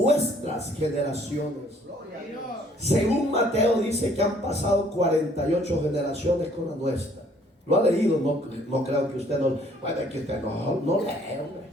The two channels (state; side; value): normal; both; correlation 0.60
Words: generaciones. Según Mateo dice que han pasado 48 generaciones con la nuestra. ¿Lo ha leído? No creo que usted no. Bueno, es que usted no lee, hombre.